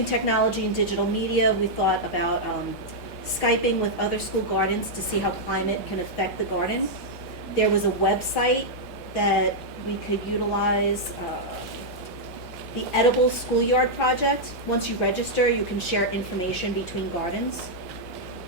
technology and digital media, we thought about Skyping with other school gardens to see how climate can affect the garden. There was a website that we could utilize, the Edible Schoolyard Project. Once you register, you can share information between gardens.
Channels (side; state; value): both; normal; correlation -0.05